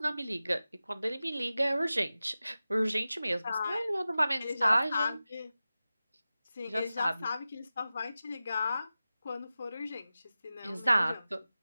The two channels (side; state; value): both; inverted; correlation -0.95